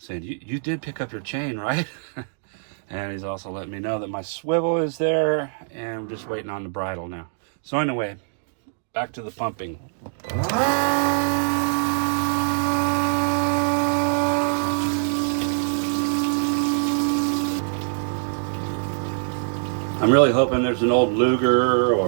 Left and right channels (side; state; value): left; silent; digital silence